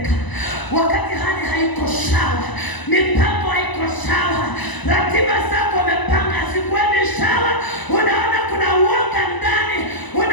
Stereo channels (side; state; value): right; late; 1.0 ms